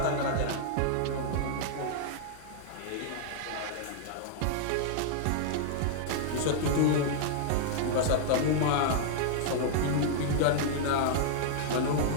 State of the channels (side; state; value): both; different; correlation -0.01